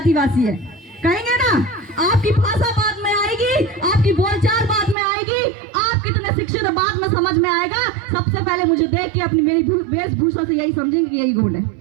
है, कहेंगे ना? आपकी भाषा बाद में आएगी, आपकी बोलचाल बाद में आएगी, आप कितने शिक्षित बाद में समझ में आएगा। सबसे पहले मुझे देख के अपनी मेरी वेशभूषा से यही समझेंगे कि यही गोंड है।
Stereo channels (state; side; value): drops out; left; at 5.0 s